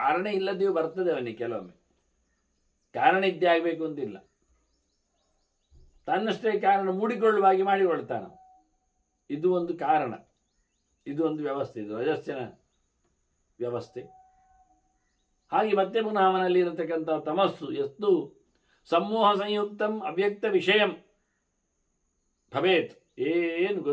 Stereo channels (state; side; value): identical; both; correlation 1.00